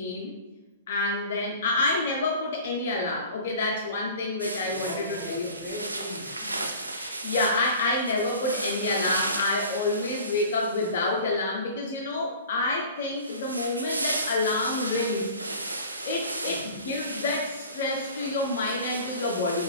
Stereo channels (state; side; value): inverted; both; correlation -0.42